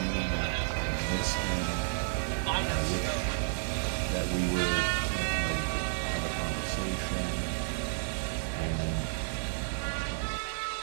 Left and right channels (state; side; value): silent; left; digital silence